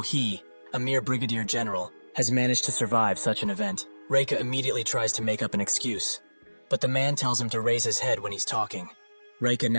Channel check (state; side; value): inverted; both; correlation -1.00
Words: he, a mere brigadier general, has managed to survive such an event. Reika immediately tries to make up an excuse, but the man tells him to raise his head when he's talking. Reika